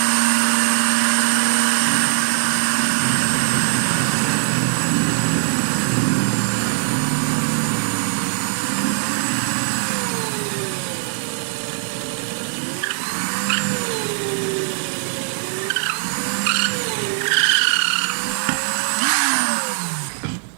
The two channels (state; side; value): silent; left; 58 dB below the other